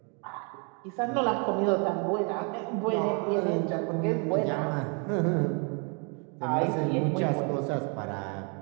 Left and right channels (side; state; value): left; quieter; 36.5 dB